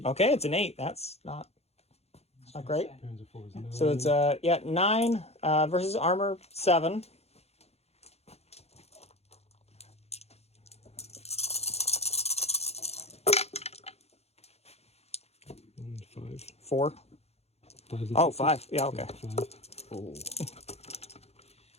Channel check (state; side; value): late; right; 0.30 ms